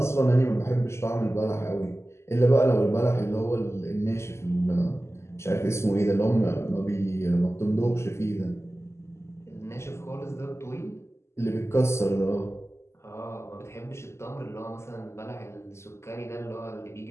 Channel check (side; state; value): right; late; 0.13 ms